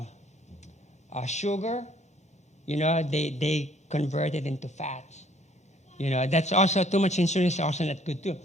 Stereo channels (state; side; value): normal; both; correlation 0.61